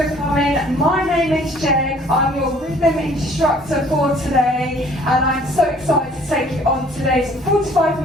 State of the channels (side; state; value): both; normal; correlation 0.56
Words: coming. My name is Jeg. I'm your rhythm instructor for today, and I'm so excited to take you on today's